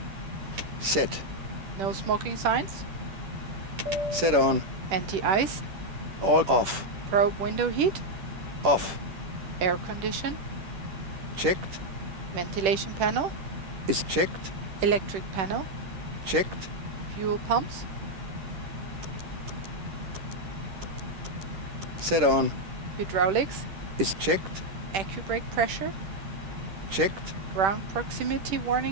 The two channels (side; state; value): left; late; 10 ms